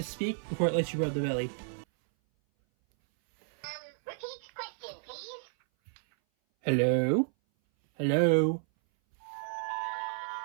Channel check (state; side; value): silent; left; 57 dB below the other